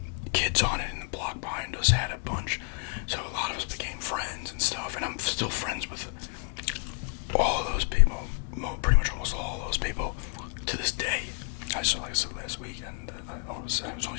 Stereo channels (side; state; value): right; quieter; 38.9 dB